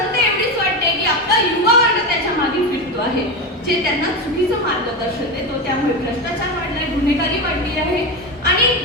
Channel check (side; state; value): both; normal; correlation 0.17